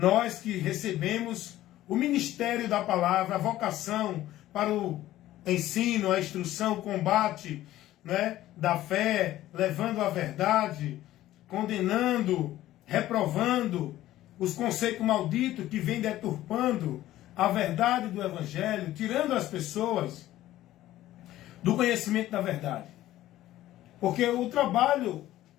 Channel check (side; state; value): right; quieter; 14.5 dB